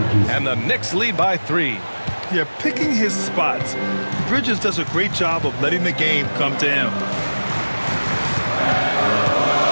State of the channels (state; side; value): inverted; both; correlation -1.00